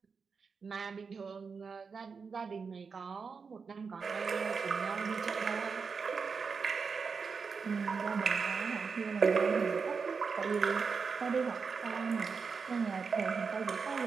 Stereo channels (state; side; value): quieter; left; 5.3 dB